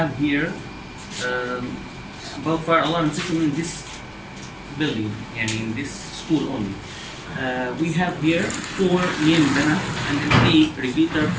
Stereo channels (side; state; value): both; identical; correlation 1.00